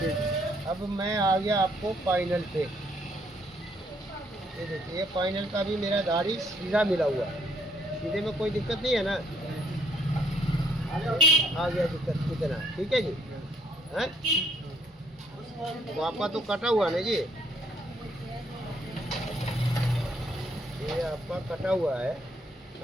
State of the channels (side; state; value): both; normal; correlation 0.67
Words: अब मैं आ गया आपको फाइनल पे। ये देखिए ये फाइनल का भी मेरा दाढ़ी सीधा मिला हुआ है, सीधे में कोई दिक्कत नहीं है ना। आ गया दिक्कत कितना, ठीक है जी। हैं तो आपका तो कटा हुआ ना जी, ये आपका कटा हुआ है,